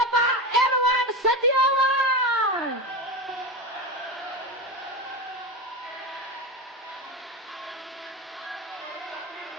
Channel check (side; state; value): both; normal; correlation 0.20